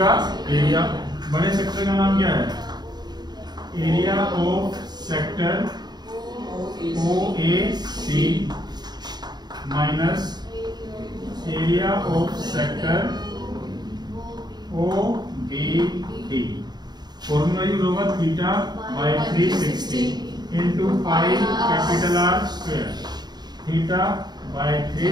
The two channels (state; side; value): late; left; 0.20 ms